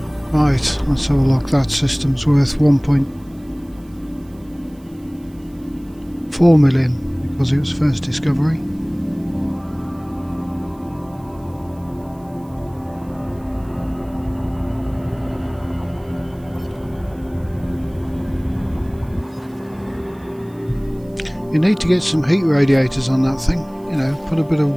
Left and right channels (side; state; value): right; noise; hiss, 30 dB below the sound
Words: Right, let's have a look. That system's worth 1.4 million because it was first discovery. You need to get some heat radiators on that thing, you know, put a bit of